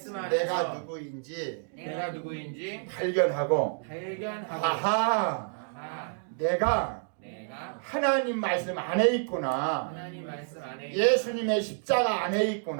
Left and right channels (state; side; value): silent; left; digital silence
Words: 안에서 내가 누구인지 내가 누구인지 발견하고 발견하고 아하 내가 하나님 말씀 안에 있구나. 하나님 말씀 안에 예수님의 십자가 안에